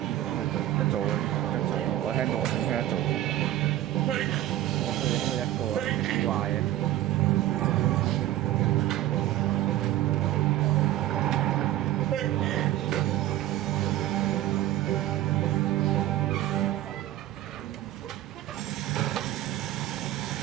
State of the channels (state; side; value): quieter; left; 14.1 dB